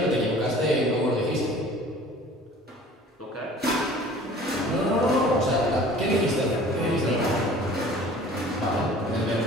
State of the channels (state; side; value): normal; both; correlation 0.47